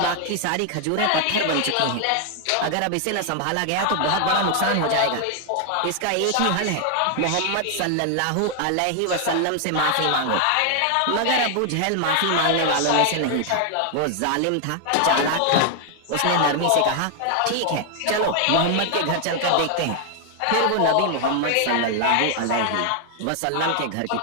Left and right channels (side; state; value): both; different; correlation 0.00